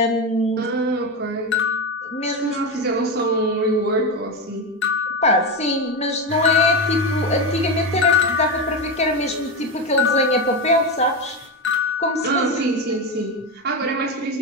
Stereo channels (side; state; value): both; normal; correlation 0.16